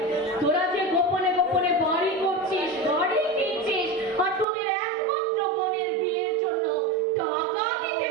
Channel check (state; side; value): drops out; left; at 4.5 s